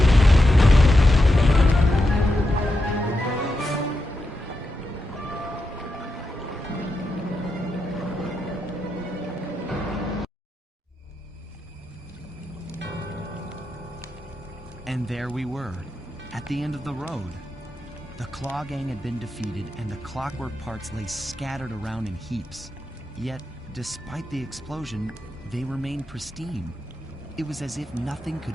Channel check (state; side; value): normal; both; correlation 0.87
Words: And there we were, at the end of the road. The Claw Gang had been defeated, and the clockwork parts lay scattered around in heaps. Yet, despite the explosion, they remained pristine. It was as if nothing